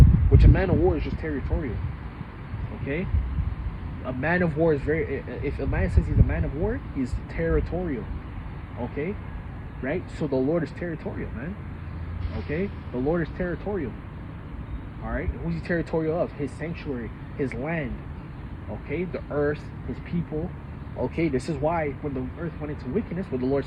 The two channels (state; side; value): identical; both; correlation 1.00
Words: Which a man of war is just territorial. Okay? A man of war is very... If a man says he's a man of war, he's territorial. Okay? Right? So the Lord is territorial, man. Okay? The Lord is territorial. Alright? Who's he territorial of? His sanctuary. His land. Okay? The earth. His people. Okay? This is why when the earth went into wickedness, what the Lord